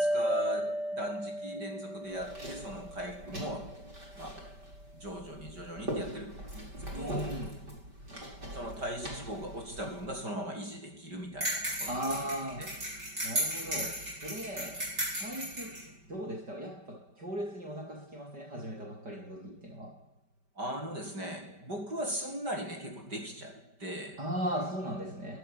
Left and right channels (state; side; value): late; left; 5.1 ms